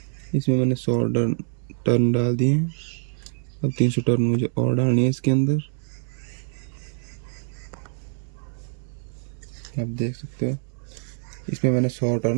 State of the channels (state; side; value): silent; left; digital silence